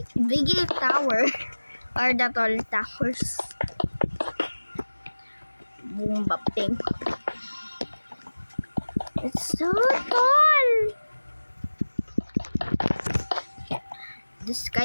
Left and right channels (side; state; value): both; inverted; correlation -1.00